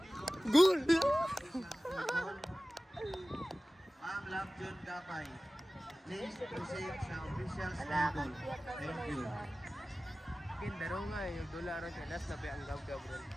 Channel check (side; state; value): both; normal; correlation 0.97